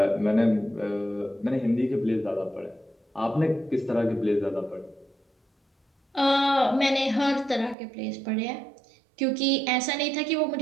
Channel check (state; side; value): drops out; left; at 7.8 s